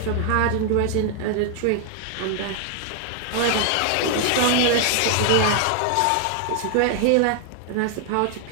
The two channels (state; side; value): different; both; correlation 0.00